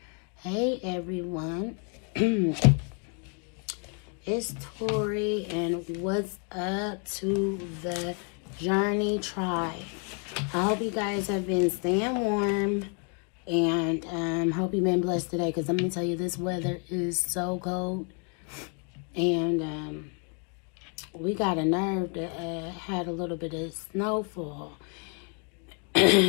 Hey, everyone. It's Tori, and what's up to the Journey Tribe? I hope you guys have been staying warm, and hope you've been blessed today, because let me tell you, this weather is so cold, and we got a nerve that had a little bit of snowfall.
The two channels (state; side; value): quieter; right; 38.5 dB